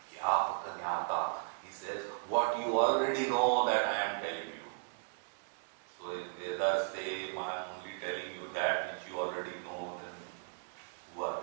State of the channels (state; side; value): silent; left; digital silence